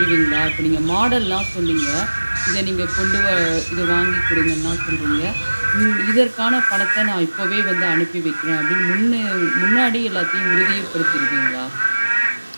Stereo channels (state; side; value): inverted; both; correlation -1.00